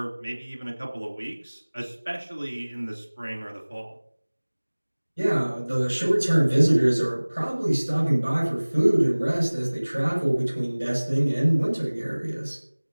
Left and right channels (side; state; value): both; inverted; correlation -1.00